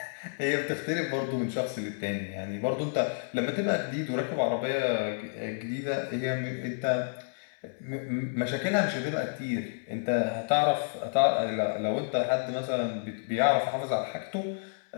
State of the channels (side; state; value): right; silent; 58 dB below the other